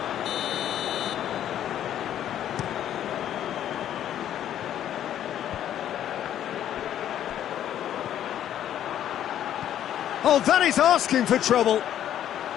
Oh, that is asking for trouble.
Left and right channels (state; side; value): quieter; right; 10.9 dB